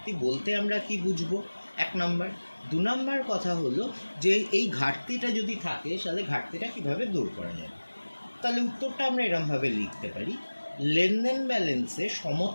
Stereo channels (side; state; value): both; inverted; correlation -1.00